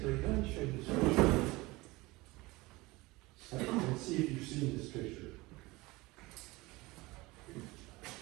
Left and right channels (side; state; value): left; quieter; 21.8 dB